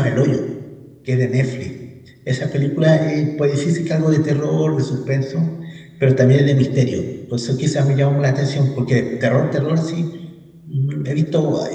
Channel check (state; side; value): identical; both; correlation 1.00